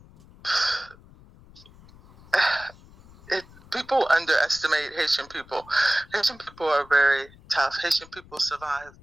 people underestimate Haitian people. Haitian people are very tough. Haitian people survive.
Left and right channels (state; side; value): noise; left; rumble, 24 dB below the sound